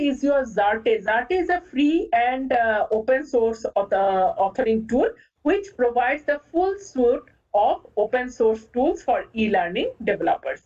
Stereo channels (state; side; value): identical; both; correlation 1.00